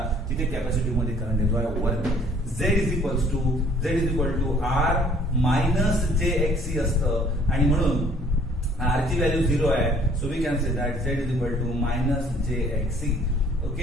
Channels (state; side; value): normal; both; correlation 0.57